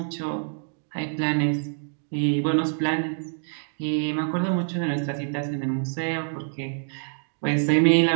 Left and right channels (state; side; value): silent; left; digital silence